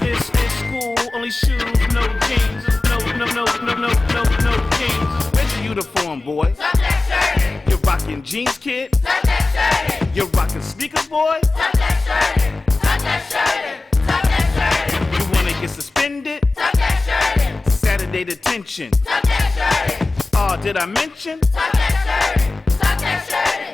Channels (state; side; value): quieter; right; 3.1 dB